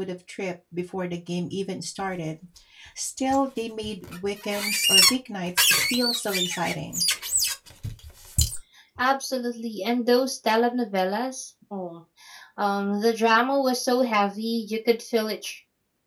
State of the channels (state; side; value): identical; both; correlation 1.00